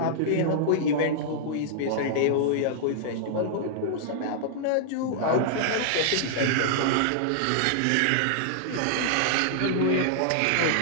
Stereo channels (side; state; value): both; different; correlation -0.01